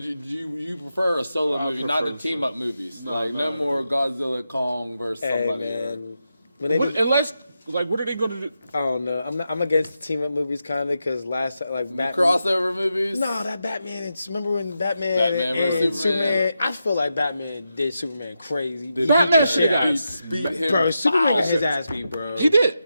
you prefer a solo movie, not the prefer team up movies? No more Godzilla Kong versus somebody. Man. When they do, Unless, like, what are they going to do? I don't know. I'm against the team up movies kind of because last time, like Batman. Crossover movies? No, that Batman. Remember when Batman, Batman and versus Superman? I feel like Batman did Superman crazy. Batman shit got beat him. Bro, Superman got foul. his ass beat, bro. He did.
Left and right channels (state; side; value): inverted; both; correlation -0.87